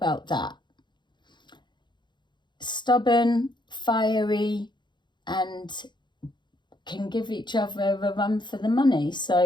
that? Stubborn, fiery, and can give each other a run for the money.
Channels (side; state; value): right; late; 0.22 ms